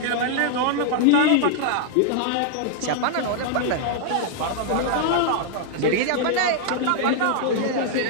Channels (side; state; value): both; different; correlation -0.01